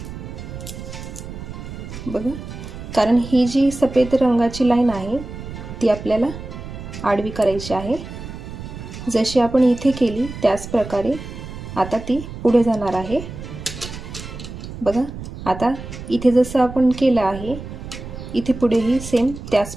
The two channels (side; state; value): right; noise; rumble, 11 dB below the sound